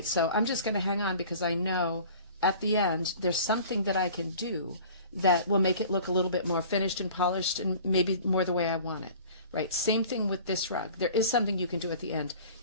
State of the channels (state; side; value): inverted; both; correlation -0.45